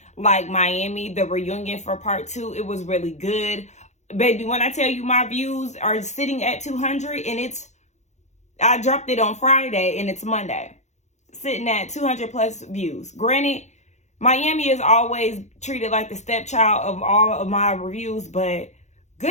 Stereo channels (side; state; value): right; late; 0.33 ms